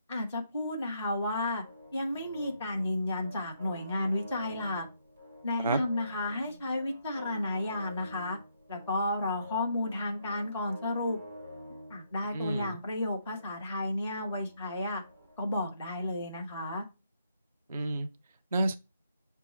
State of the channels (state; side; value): inverted; both; correlation -0.74